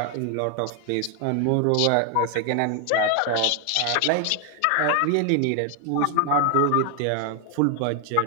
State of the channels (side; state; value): both; different; correlation 0.00